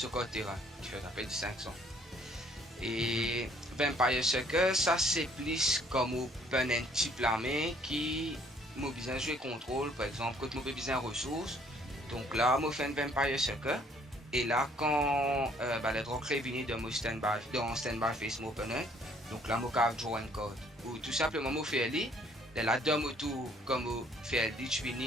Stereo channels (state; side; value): normal; both; correlation 0.61